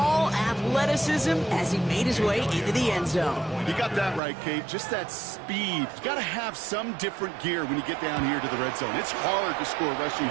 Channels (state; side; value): drops out; left; at 4.2 s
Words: athleticism as he made his way into the end zone. You got that right, Kate. Just that speed. You got to have some different gear when you get down here to the red zone. It's hard to score rushing